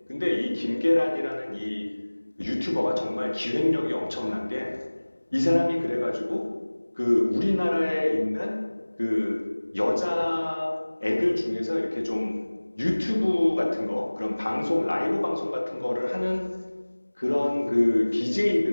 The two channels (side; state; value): both; inverted; correlation -1.00